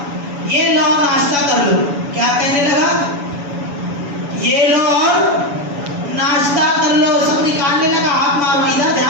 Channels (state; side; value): late; left; 7.1 ms